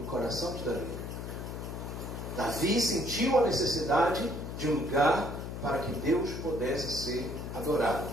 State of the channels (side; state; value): left; noise; hum, 7 dB below the sound